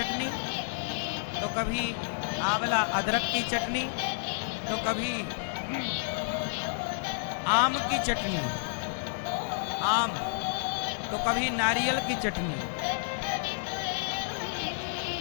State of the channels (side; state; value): right; silent; digital silence